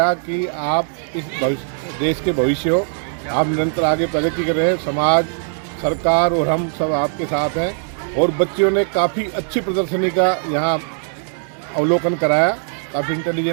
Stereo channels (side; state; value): left; silent; digital silence